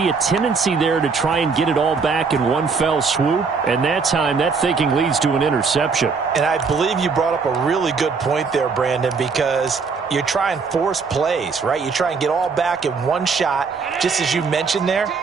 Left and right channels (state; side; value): quieter; left; 5.0 dB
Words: a tendency there to try and get it all back in one fell swoop. And that time, that thinking leads to an interception. And I believe you brought up a really good point there, Brandon, because you try and force plays, right? You try and get all back in one shot, just as you mentioned there.